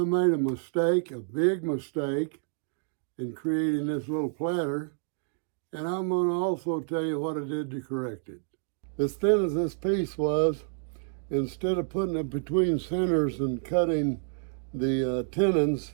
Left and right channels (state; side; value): silent; left; digital silence